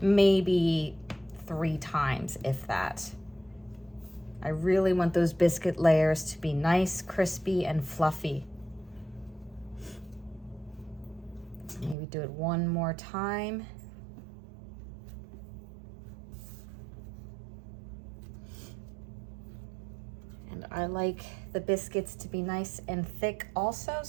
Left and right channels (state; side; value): drops out; left; at 12.0 s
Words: maybe 3 times, if that. I really want those biscuit layers to be nice, crispy, and fluffy. Maybe do it one more time. And I like the biscuits to be nice and thick also,